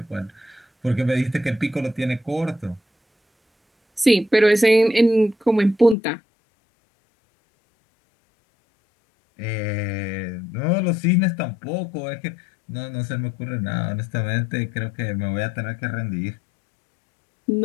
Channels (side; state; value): right; drops out; at 6.0 s